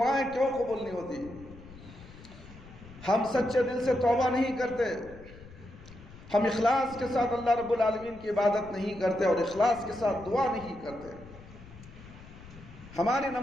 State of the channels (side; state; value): left; noise; rumble, 18 dB below the sound